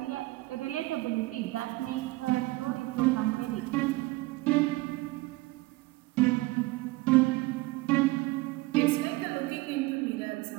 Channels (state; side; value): quieter; left; 21.1 dB